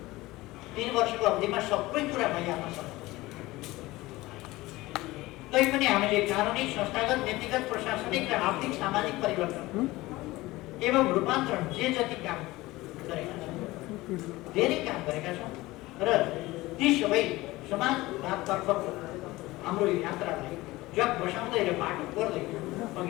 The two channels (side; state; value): right; quieter; 19.3 dB